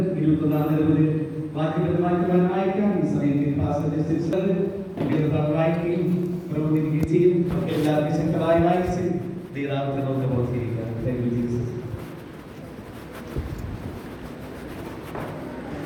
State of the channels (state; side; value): identical; both; correlation 1.00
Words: എല്ലാവർക്കും ശക്തമായി വായിച്ച് ദൈവത്തെ നമുക്ക് ബോധിപ്പിക്കാം. Thank you, Jesus.